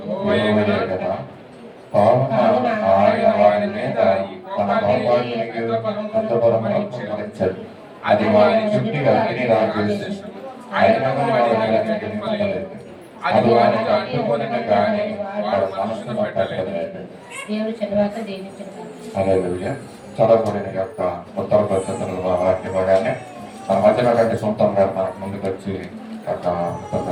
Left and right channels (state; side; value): identical; both; correlation 1.00